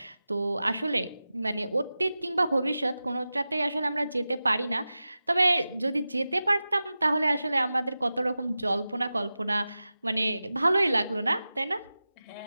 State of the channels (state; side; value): inverted; both; correlation -0.94